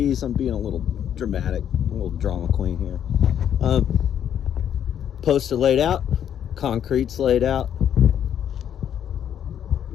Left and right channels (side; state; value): right; quieter; 9.5 dB